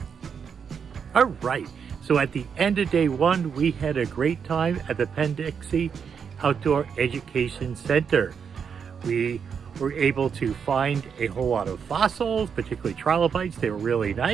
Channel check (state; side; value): quieter; left; 6.8 dB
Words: All right. So at the end of day 1, we had a great time at the Penn Dixie Outdoor Education Center. We were able to find a whole lot of fossils, particularly trilobites. They were really